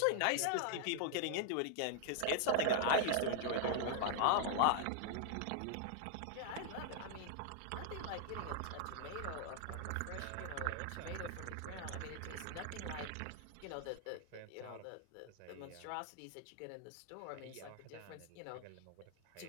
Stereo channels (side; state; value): both; different; correlation -0.01